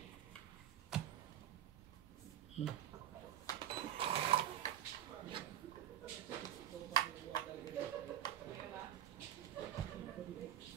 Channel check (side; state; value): left; quieter; 11.1 dB